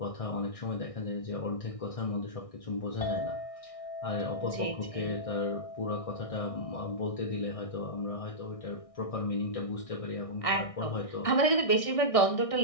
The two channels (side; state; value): right; late; 1.6 ms